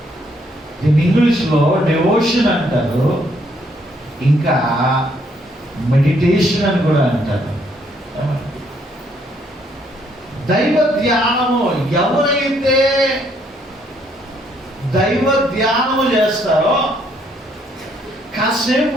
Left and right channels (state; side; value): normal; both; correlation 0.69